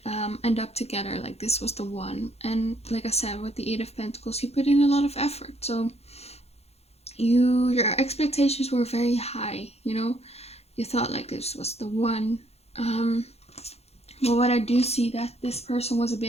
end up together, like this was the one. And like I said, with the 8 of Pentacles, you put in a lot of effort, so your expectations were very high, you know. You thought like this was the one. But what I do see, that this person was a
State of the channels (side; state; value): right; late; 0.30 ms